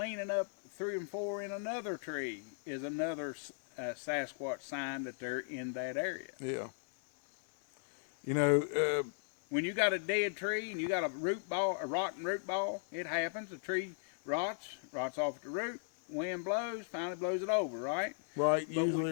up 3 and 4 in another tree is another Sasquatch sign that they're in that area. Yeah. You know, when you got a dead tree and you got a rotten root ball, it happens. The tree rots off at the root. Wind blows, finally blows it over, right? right,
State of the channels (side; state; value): right; silent; 53 dB below the other